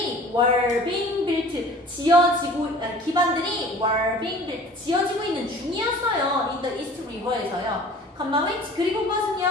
were being built 지어지고 기반들이 were being built 지어지고 있는 중이었어요. in the East River에서요. which 그리고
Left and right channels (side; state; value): both; normal; correlation 0.46